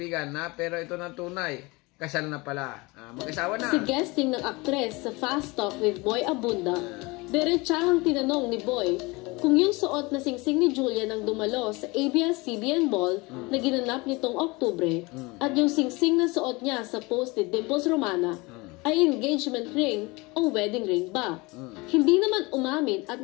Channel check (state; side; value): quieter; right; 24.5 dB